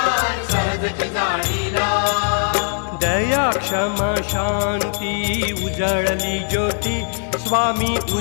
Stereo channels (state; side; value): silent; right; digital silence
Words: सहजची जाळीला दया क्षमा शांती उजळली ज्योती स्वामी